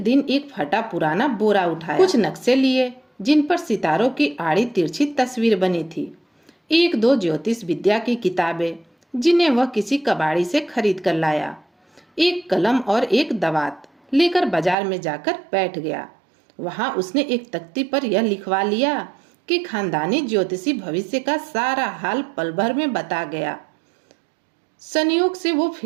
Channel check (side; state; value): left; drops out; at 14.8 s